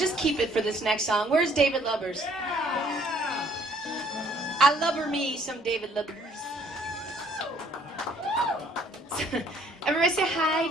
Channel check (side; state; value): both; normal; correlation 0.62